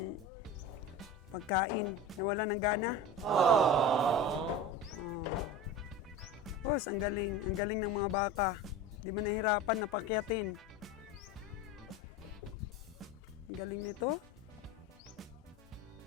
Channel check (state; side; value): normal; both; correlation 0.30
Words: pagkain. Nawala ng gana. Boss, ang galing ng mga baka. Di ba nahirapan na pakyatin? Ang galing nito.